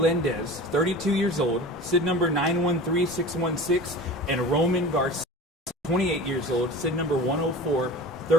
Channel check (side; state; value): both; normal; correlation 0.36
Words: 32 years old, SID number 913616, and Roman Garcia, 28 years old, SID number